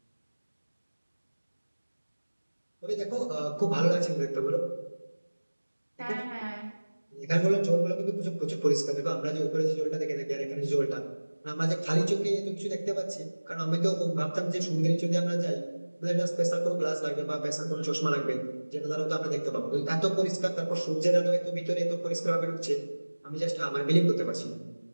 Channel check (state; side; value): inverted; both; correlation -1.00